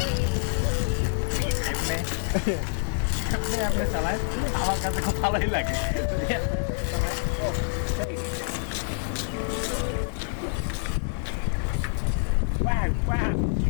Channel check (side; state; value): right; silent; digital silence